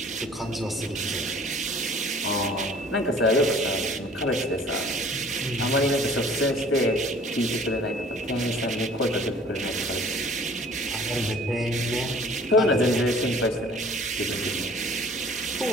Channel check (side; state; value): both; normal; correlation 0.51